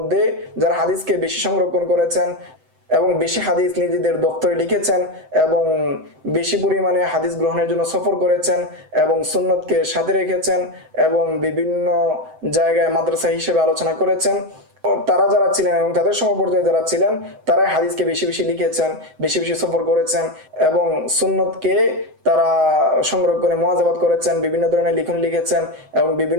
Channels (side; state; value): left; late; 7.8 ms